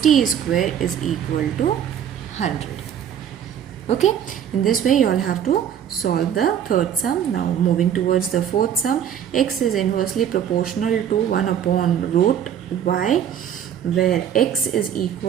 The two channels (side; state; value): left; quieter; 9.2 dB